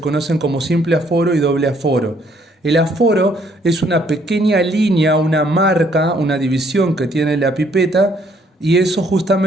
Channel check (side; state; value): both; normal; correlation 0.66